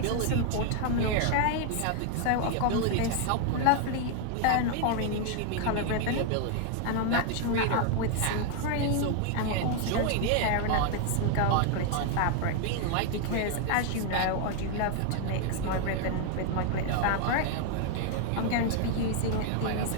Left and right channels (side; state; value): both; different; correlation 0.00